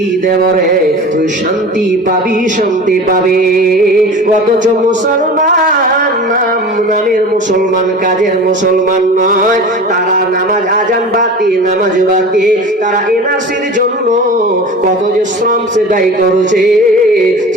দেব রে, তুই শান্তি পাবি, শান্তি পাবি। অথচ মুসলমান নামের মুসলমান, কাজের মুসলমান নয়, তারা নামাজ আজান বাতি, নামাজ বাতি, তারা এনআরসির জন্য কত যে শ্রম সে দায়ী করেছে,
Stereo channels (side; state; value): both; normal; correlation 0.35